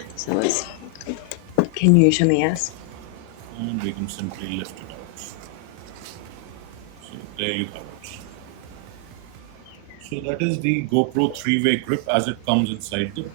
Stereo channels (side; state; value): both; different; correlation 0.00